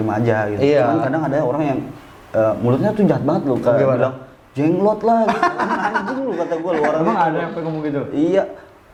aja gitu. Iya. Cuman kadang ada orang yang mulutnya tuh jahat banget loh, kayak Gimana? bilang jenglot lah gitu. Anjing lu kata gua, lu orang Emang itu. ada yang ngomong gitu? Iya,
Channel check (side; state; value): both; identical; correlation 1.00